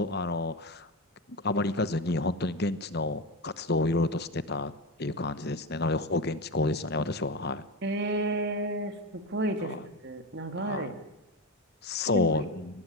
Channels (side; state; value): both; normal; correlation 0.18